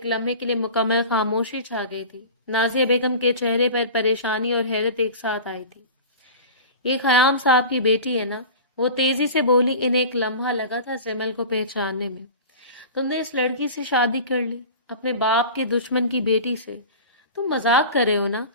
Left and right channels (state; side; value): inverted; both; correlation -0.35